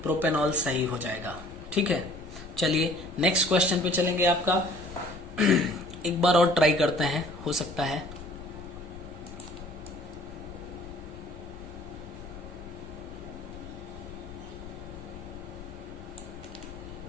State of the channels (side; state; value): left; noise; rumble, 14 dB below the sound